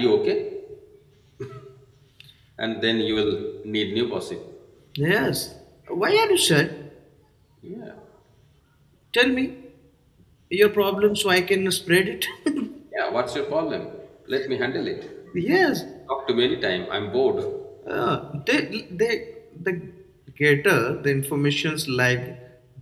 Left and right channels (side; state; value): both; identical; correlation 1.00